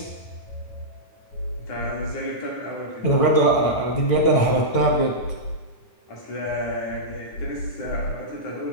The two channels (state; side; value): late; right; 9.4 ms